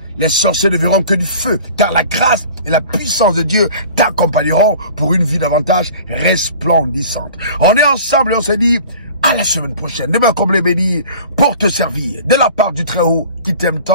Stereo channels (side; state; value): both; inverted; correlation -0.43